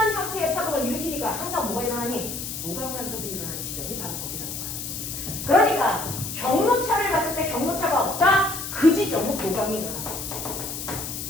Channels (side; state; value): left; noise; hiss, 6 dB below the sound